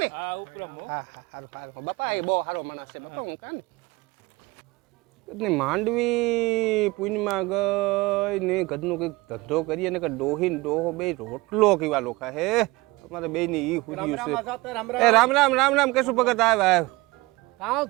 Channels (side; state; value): left; quieter; 22.4 dB